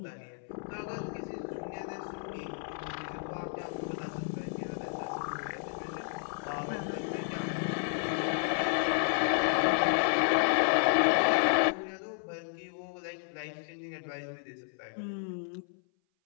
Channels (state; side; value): silent; right; 56 dB below the other